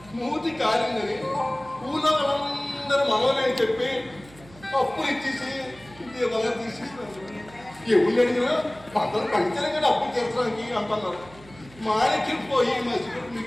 మూతి కాలిందని ఊళ్ళో వాళ్ళందరూ మనోనే చెప్పి అప్పులు ఇచ్చేసి దీపాలు తీసేసినారు. ఎవరు అడిగినా అందరూ పంచాలి కదా అప్పులు తీర్చడానికి అంటున్నారు. మాణిక్యం పోయి మసిపెట్టి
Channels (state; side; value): noise; right; hum, 22 dB below the sound